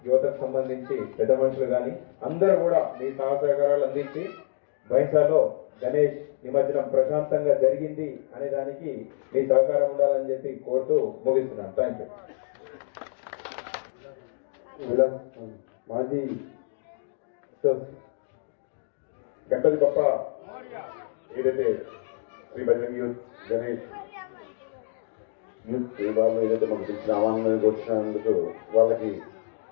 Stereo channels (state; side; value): silent; right; digital silence